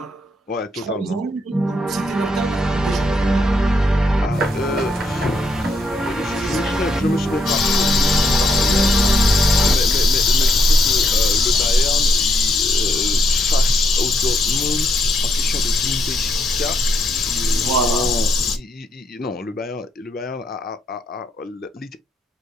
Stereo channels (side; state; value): both; normal; correlation 0.76